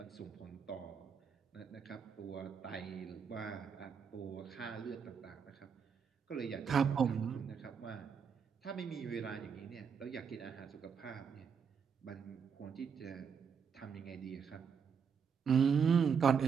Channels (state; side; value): quieter; left; 6.6 dB